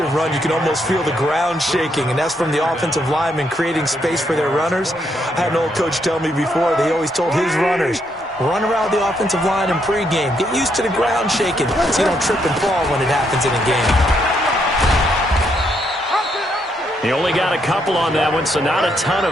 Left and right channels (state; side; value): normal; both; correlation 0.76